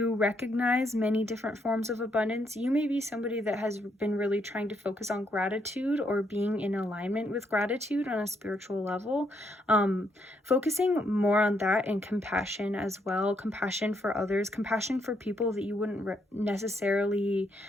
recognize many different forms of abundance. You may be somebody that has been really trying to focus on gratitude or being in alignment with gratitude on a spiritual level. Focusing more on that, and compassion as well. Compassion for others, compassion for people that you wouldn't necessarily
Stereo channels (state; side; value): normal; both; correlation 0.75